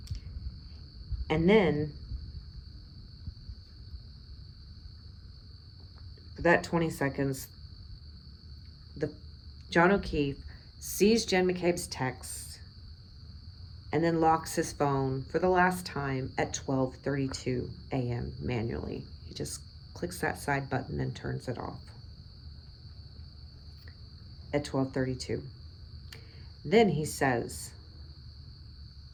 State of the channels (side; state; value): both; identical; correlation 1.00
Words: And then, for that 20 seconds, John O'Keefe sees Jen McCabe's text and then locks his phone for the last time at 12:32 a.m. manually. He just clicks that side button and turns it off at 12:32. Then he says